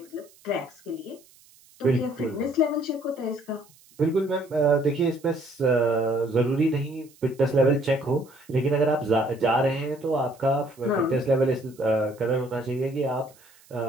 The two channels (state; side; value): noise; right; hiss, 28 dB below the sound